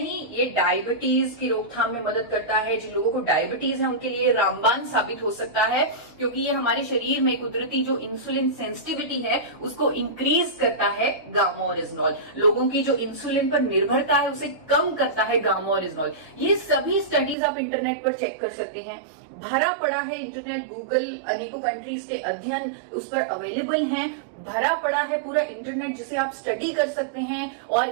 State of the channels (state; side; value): drops out; left; at 17.4 s